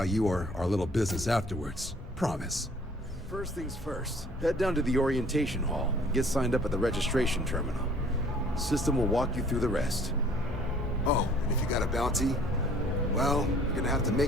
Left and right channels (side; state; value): both; normal; correlation 0.55